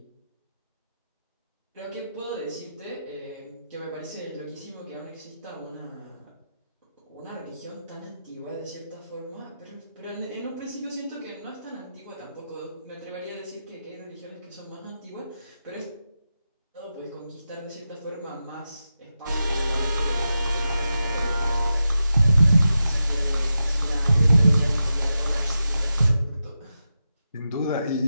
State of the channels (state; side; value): inverted; both; correlation -0.89